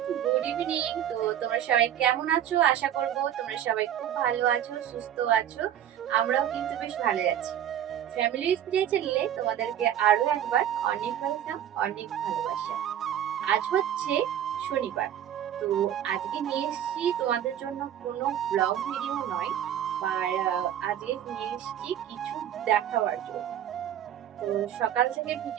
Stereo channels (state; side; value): quieter; left; 10.6 dB